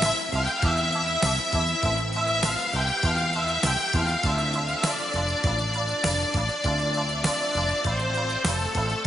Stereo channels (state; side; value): normal; both; correlation 0.86